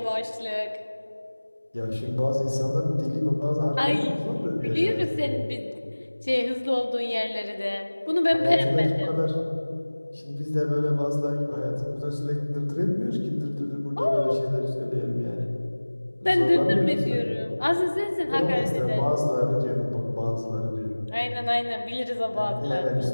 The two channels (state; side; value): inverted; both; correlation -1.00